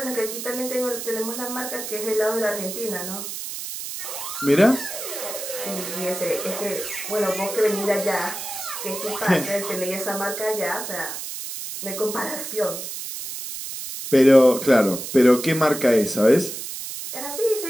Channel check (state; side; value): noise; right; hiss, 7 dB below the sound